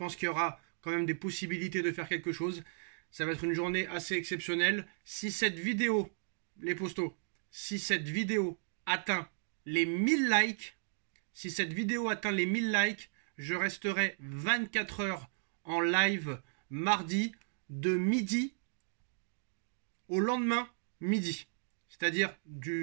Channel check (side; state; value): left; silent; digital silence